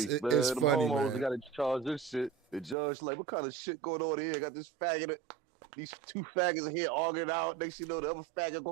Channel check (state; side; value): drops out; left; at 2.8 s